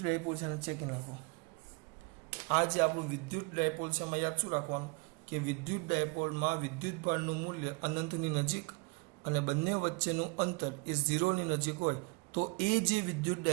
ડાયપોલ છે એને ચેકી નાખો. આ જે આપણું વિદ્યુત ડાયપોલ છે એમાં યાદ શું રાખવાનું કે વિદ્યુત ડાયપોલમાં વિદ્યુત ભારનું મૂલ્ય અનંતની નજીક અને બંને વચ્ચેનું અંતર એ 0 ની નજીક હોય તો એ જે વિદ્યુત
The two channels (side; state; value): left; quieter; 30.2 dB